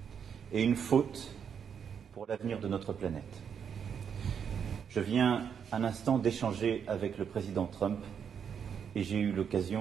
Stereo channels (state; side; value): quieter; left; 7.5 dB